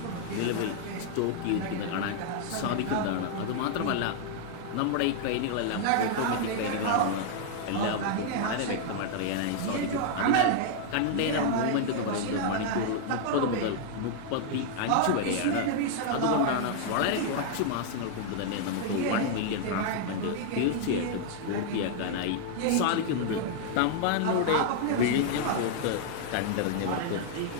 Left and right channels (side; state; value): both; different; correlation -0.01